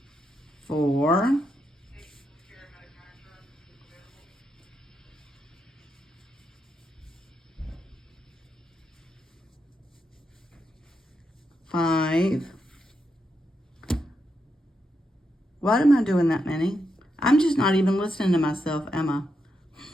4, 5. Why am I doing that many? I'm just not even listening to myself, am I?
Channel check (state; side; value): normal; both; correlation 0.83